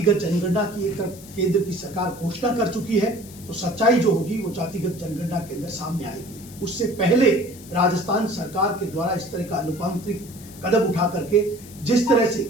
जनगणना की एक तरफ केंद्र की सरकार घोषणा कर चुकी है तो सच्चाई जो होगी वो जातिगत जनगणना के अंदर सामने आएगी। उससे पहले राजस्थान सरकार के द्वारा इस तरह का लोकतांत्रिक कदम उठा करके जिस तरह से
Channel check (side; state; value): left; noise; hiss, 19 dB below the sound